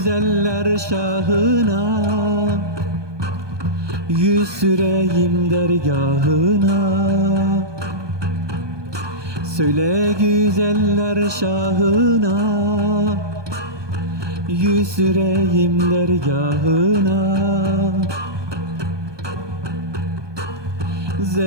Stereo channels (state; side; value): late; left; 1.2 ms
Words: şahına, yüz süreyim dergahına. Söyle güzeller şahına, yüz süreyim dergahına.